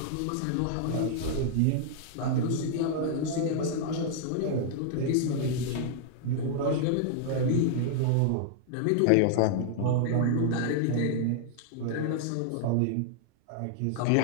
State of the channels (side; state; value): both; different; correlation -0.01